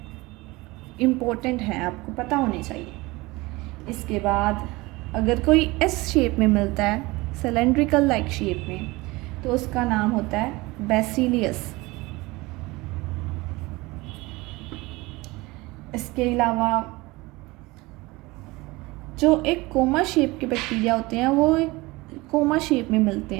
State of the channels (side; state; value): left; quieter; 22.1 dB